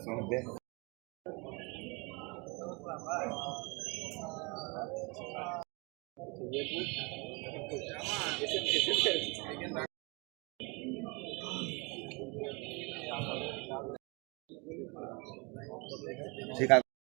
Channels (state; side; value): quieter; left; 29.1 dB